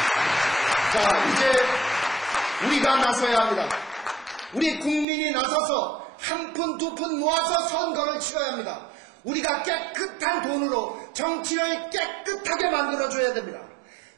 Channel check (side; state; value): left; drops out; at 5.1 s